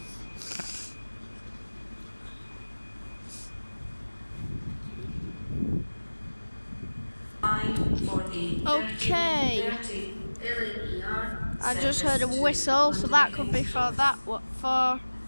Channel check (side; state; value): both; inverted; correlation -1.00